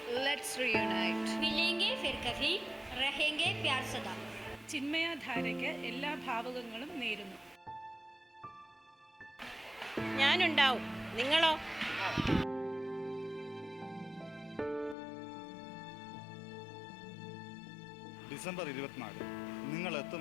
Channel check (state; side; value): drops out; right; at 15.0 s